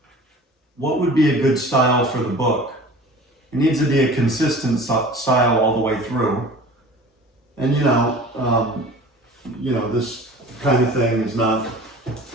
what would be a good style for the book. It needs to be a consistent style all the way through. And this kind of thing is not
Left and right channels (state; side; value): normal; both; correlation 0.42